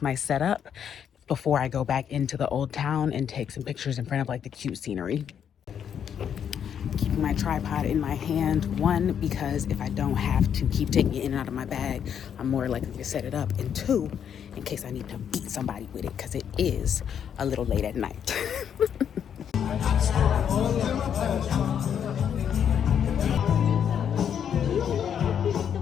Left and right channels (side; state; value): right; quieter; 8.4 dB